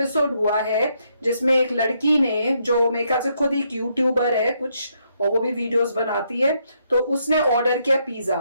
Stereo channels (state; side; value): inverted; both; correlation -0.76